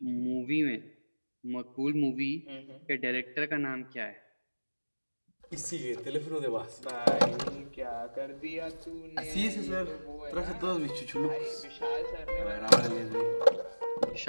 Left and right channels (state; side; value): inverted; both; correlation -1.00